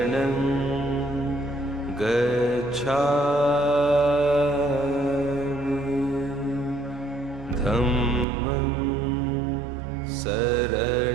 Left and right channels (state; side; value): drops out; left; at 8.2 s